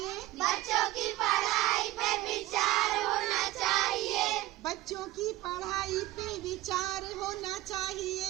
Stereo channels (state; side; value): quieter; left; 16.9 dB